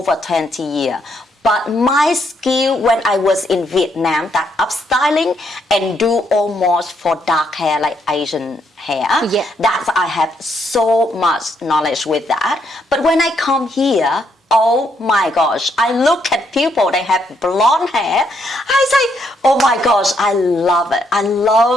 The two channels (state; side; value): normal; both; correlation 0.74